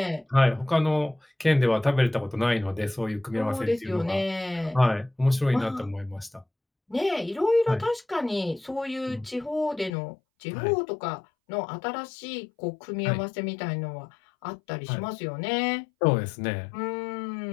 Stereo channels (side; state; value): right; drops out; at 9.9 s